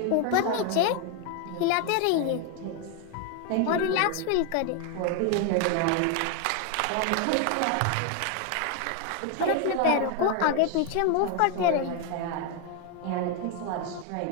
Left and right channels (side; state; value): both; different; correlation 0.01